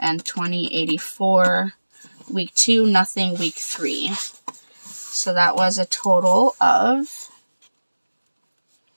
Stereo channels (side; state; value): both; inverted; correlation -1.00